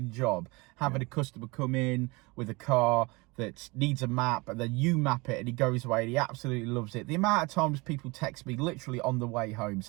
job having a customer come in with a car that needs a map and then you map it and he goes away and he absolutely loves it. The amount of times people text me literally on the way home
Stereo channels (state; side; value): quieter; left; 25.3 dB